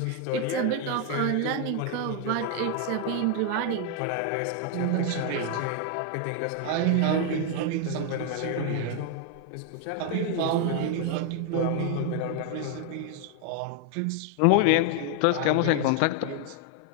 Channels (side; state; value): both; different; correlation 0.01